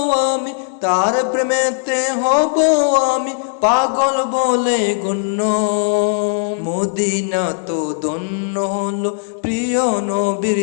আমি, তার প্রেমেতে হব আমি পাগল বলে গণ্য। মদিনা তো ধন্য হলো প্রিয় নবীর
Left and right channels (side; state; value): right; silent; 64 dB below the other